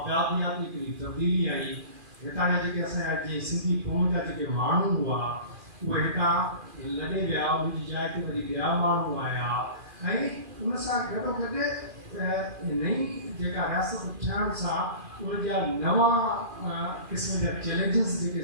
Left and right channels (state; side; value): late; left; 2.4 ms